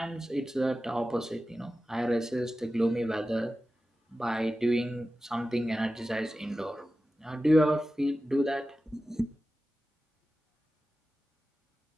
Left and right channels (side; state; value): both; normal; correlation 0.94